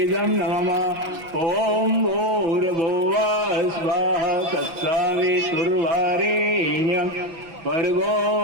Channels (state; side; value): late; left; 6.0 ms